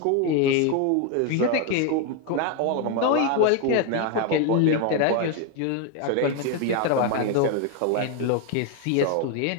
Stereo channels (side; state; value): both; different; correlation 0.01